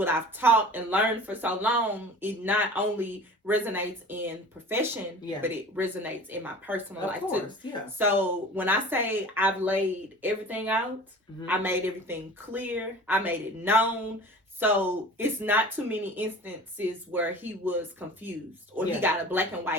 I've taught and learned for so long, it not only resonates in profession, but it resonates in my personal life too. Yeah. So when I say I've laid everything out, I made everything clear, I made it known. So it's not too many instances where he was confused or he got a black and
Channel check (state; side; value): normal; both; correlation 0.41